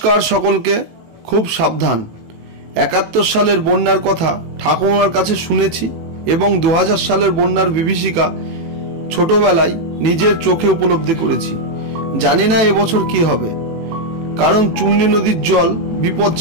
সকলকে। খুব সাবধান। ৭১ সালের বন্যার কথা ঠাকুমার কাছে শুনেছি এবং ২০০০ সালের বন্যার বিভীষিকা ছোটবেলায় নিজের চোখে উপলব্ধি করেছি। জানি না এবছর কি হবে, কারণ চূর্ণী নদীর জল বিপদ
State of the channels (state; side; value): late; left; 18 ms